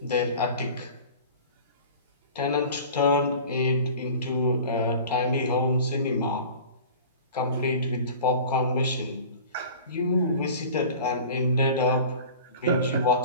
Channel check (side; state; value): both; inverted; correlation -0.41